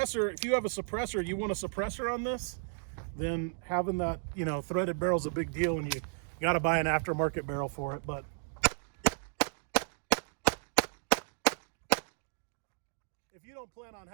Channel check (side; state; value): left; silent; digital silence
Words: you want a suppressor on this, then having that, threaded barrel is a big deal, and you got to buy an aftermarket barrel for it. But if you don't plan on